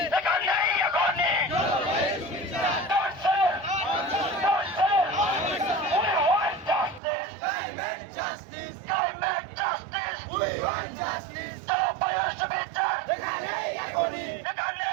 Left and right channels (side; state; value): left; drops out; at 7.0 s